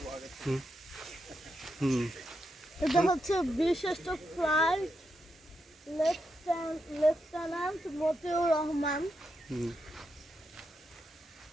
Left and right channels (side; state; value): both; normal; correlation 0.84